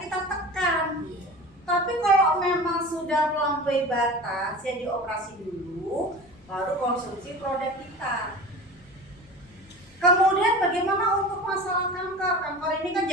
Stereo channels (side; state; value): left; noise; rumble, 27 dB below the sound